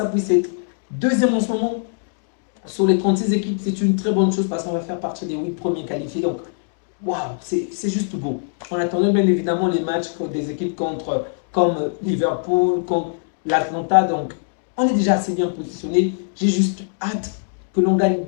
puisse être deuxième en ce moment sur les 36 équipes, c'est une très bonne chose parce qu'on va faire partie des 8 premiers qualifiés. Donc, waouh, c'est juste beau. On attendait bien évidemment les matchs des équipes comme Liverpool, comme l'Atlanta. Donc, on est déjà assez bien positionné. J'ai juste hâte que l'on gagne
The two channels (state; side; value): silent; right; digital silence